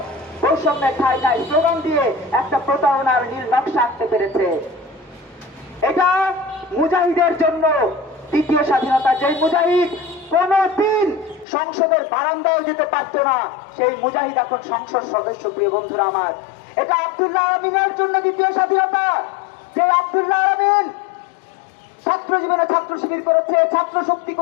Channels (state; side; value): drops out; right; at 11.5 s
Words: বৈষম্যের ঠাঁই ঠাঁই স্লোগান দিয়ে একটা প্রতারণার নীল নকশা আনতে পেরেছে। এটা মুজাহিদের জন্য দ্বিতীয় স্বাধীনতা, যে মুজাহিদ কোনদিন সংসদের বারান্দায় যেতে পারত না, সেই মুজাহিদ এখন সংসদ সদস্য। প্রিয় বন্ধুরা আমার, এটা আব্দুল্লাহ আমিনের জন্য দ্বিতীয় স্বাধীনতা, যে আব্দুল্লাহ আমিন ছাত্র জীবনে ছাত্র শিবির করেছে, ছাত্র শক্তি